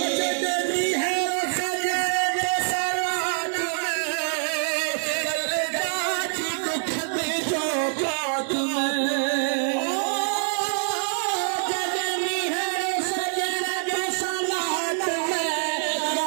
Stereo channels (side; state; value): left; silent; digital silence